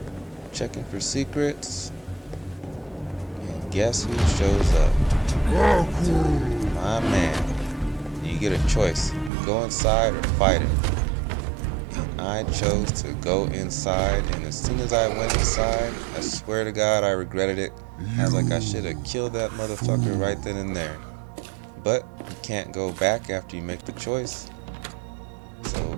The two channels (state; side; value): drops out; left; at 9.3 s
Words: checking for secrets, and guess who shows up? My man. You get a choice, go inside or fight him. And I chose to go inside, and as soon as I went inside, I swear to God I regretted it. I was like, I should have killed that motherfucker right then and there. But you can't go back after you make the choice,